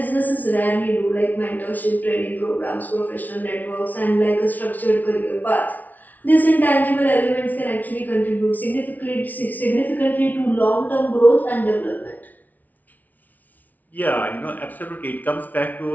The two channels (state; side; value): late; right; 0.077 ms